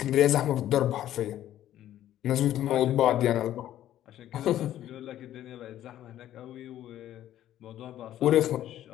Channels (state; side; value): quieter; right; 12.4 dB